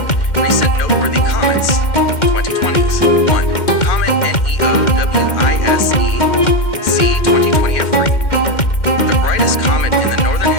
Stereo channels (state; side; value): late; right; 2.1 ms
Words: Recent noteworthy comets: 2020s. 1. Comet NEOWISE C2020F3, the brightest comet in the northern